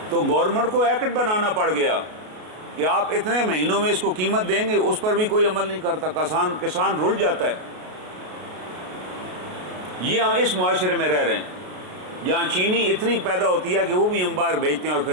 تو گورنمنٹ کو ایکٹ بنانا پڑ گیا کہ آپ اتنے مہینوں میں اس کو قیمت دیں گے. اس پر بھی کوئی عمل نہیں کرتا، کسان رل جاتا ہے. یہ ہم اس معاشرے میں رہ رہے ہیں جہاں چینی اتنی پیدا ہوتی ہے کہ وہ بھی ہم باہر بیچتے ہیں اور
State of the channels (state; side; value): late; left; 33 ms